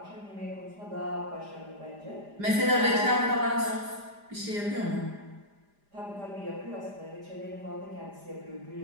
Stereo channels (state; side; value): late; left; 5.0 ms